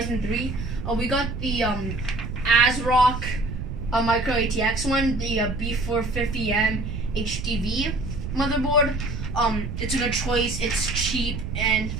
3. We got the ASRock Micro ATX one, the B450M HDV motherboard. It's a good choice. It's cheap, and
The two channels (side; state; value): right; noise; rumble, 5 dB below the sound